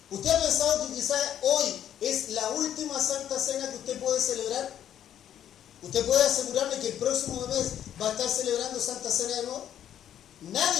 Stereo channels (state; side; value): quieter; right; 10.4 dB